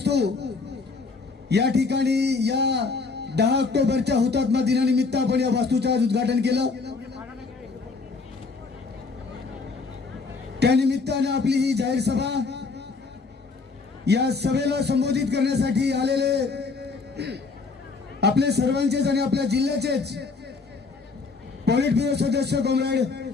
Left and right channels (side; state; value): right; quieter; 4.3 dB